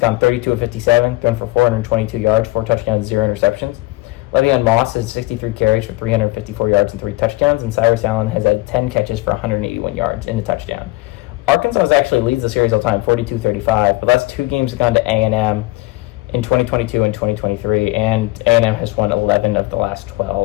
gone 32 of 57, thrown for 422 yards, 4 touchdowns, 0 interceptions. Le'Veon Moss has 63 carries for 354 yards and 3 touchdowns, and Cyrus Allen has had 10 catches for 181 yards and a touchdown. Arkansas actually leads the series all time, 42-35, but last 2 games have gone to A&M in 2022 and 2023, and A&M has won 11 of the last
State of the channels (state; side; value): quieter; right; 20.3 dB